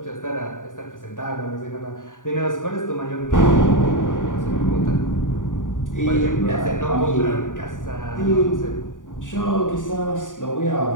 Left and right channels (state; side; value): late; right; 0.88 ms